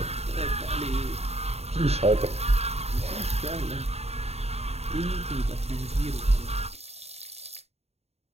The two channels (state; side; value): late; left; 0.30 ms